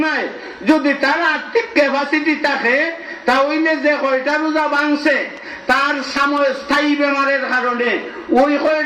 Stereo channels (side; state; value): both; identical; correlation 1.00